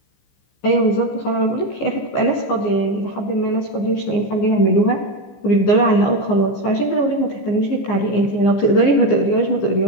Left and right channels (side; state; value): right; late; 15 ms